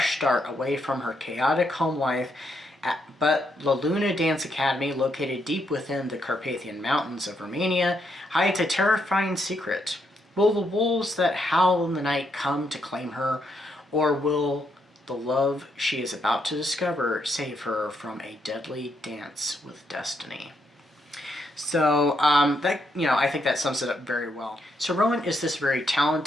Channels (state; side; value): normal; both; correlation 0.77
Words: start away from her chaotic home life, but La Luna Dance Academy, located deep within the Carpathian Mountains of Romania, hides a terrifying secret. Will the wolves that howl in the night come to claim her, or will the love she is about to discover save her from a deadly dance with destiny? So I think that sums it up very well. So Rowan is this very